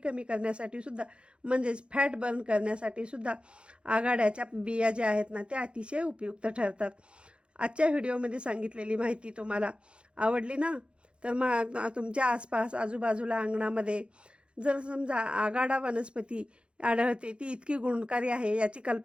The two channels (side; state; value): left; late; 0.056 ms